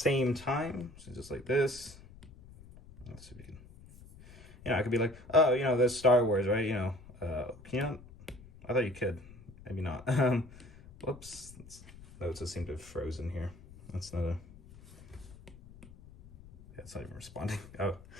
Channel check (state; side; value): noise; left; rumble, 19 dB below the sound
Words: time. So just like this. Let's see if we can, you know, I could be like, oh, you know, there's Star Wars, right? You know, can you not? I thought you could. Maybe not. Whoops. Notes just seem to have frozen here. That's not a... Yeah, it's not even responding. Oh,